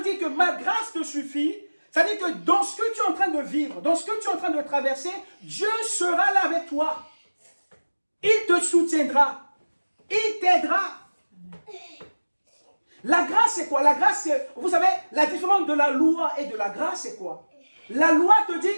dit que ma grâce te suffit, c'est-à-dire que dans ce que tu es en train de vivre, dans ce que tu es en train de traverser, Dieu sera là avec toi. Il te soutiendra. Il t'aidera. La grâce, c'est quoi? La grâce, c'est, vous savez, la différence de la loi et de la grâce, c'est quoi? La loi te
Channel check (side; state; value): both; inverted; correlation -1.00